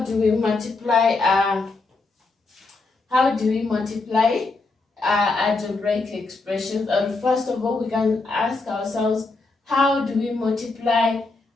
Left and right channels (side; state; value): right; quieter; 3.7 dB